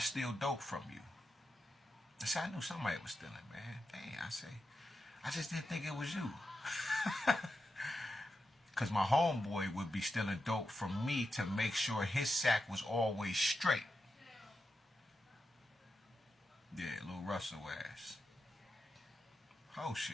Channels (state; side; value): normal; both; correlation 0.88